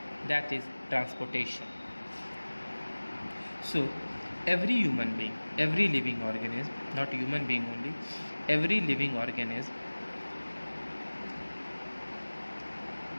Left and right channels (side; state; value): both; inverted; correlation -1.00